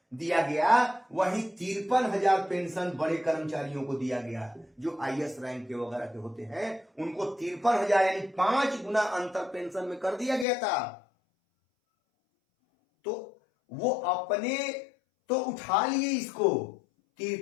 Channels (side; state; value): right; drops out; at 10.5 s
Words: दिया गया, वही 53,000 पेंशन बड़े कर्मचारियों को दिया गया, जो आईएएस रैंक के वगैरह के होते हैं, उनको 53,000 यानी 5 गुना अंतर पेंशन में कर दिया गया था। तो वो अपने तो उठा लिए इसको,